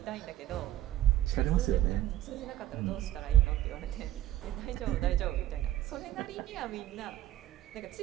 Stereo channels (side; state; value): left; quieter; 13.7 dB